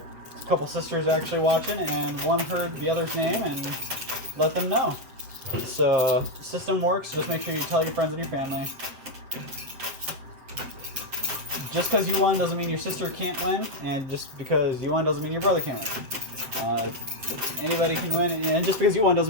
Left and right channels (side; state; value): left; late; 7.8 ms